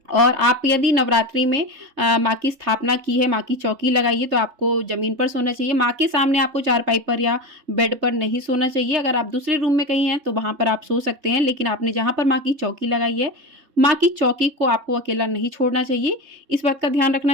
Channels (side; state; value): left; late; 3.3 ms